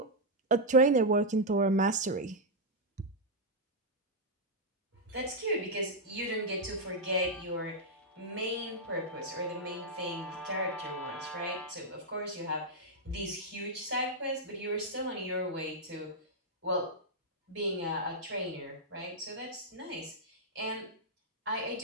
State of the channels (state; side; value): normal; both; correlation -0.03